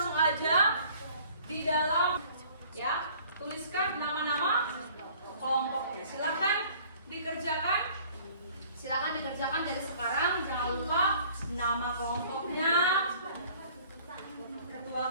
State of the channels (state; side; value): inverted; both; correlation -0.53